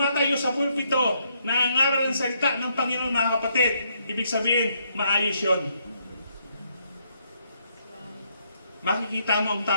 sa pulpito nangangaral ng salita ng Panginoon mga kapatid. Ibig sabihin, maayos yun. Makikita mo ang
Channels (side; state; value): both; inverted; correlation -0.74